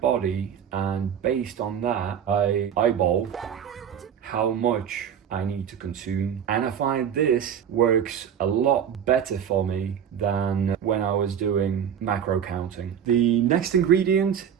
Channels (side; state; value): left; quieter; 8.6 dB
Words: and based on that, I eyeball how much I need to consume. And I find this works a lot better for me than when I was doing macro counting. The next ingredient